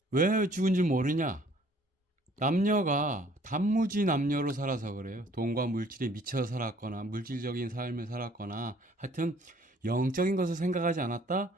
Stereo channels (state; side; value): normal; both; correlation 0.58